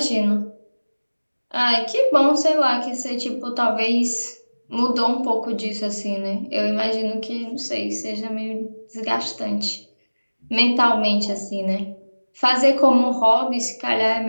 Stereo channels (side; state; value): both; inverted; correlation -1.00